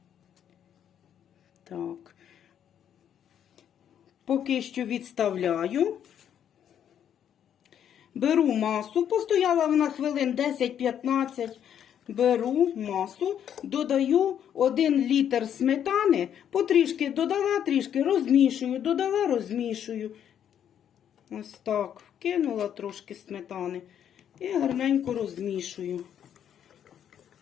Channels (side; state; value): right; quieter; 9.4 dB